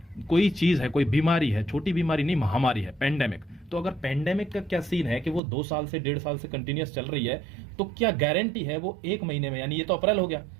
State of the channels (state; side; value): drops out; left; at 5.4 s